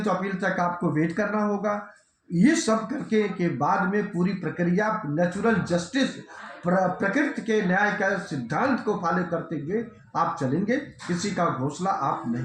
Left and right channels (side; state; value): both; identical; correlation 1.00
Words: तो अपील तक आपको वेट करना होगा। ये सब करके के बाद में पूरी प्रक्रिया नेचुरल जस्टिस, प्रकृति के न्याय का सिद्धांत को फॉलो करते हुए आप चलेंगे। किसी का घोंसला आप